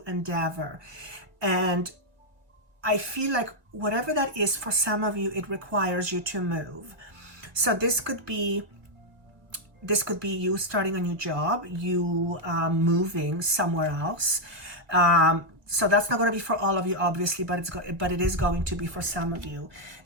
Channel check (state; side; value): late; left; 2.0 ms